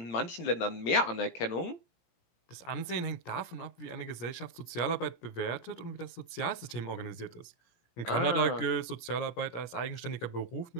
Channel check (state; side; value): late; right; 17 ms